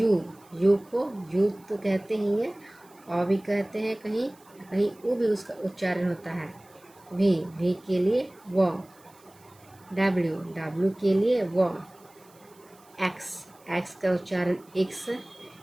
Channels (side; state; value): right; noise; hiss, 28 dB below the sound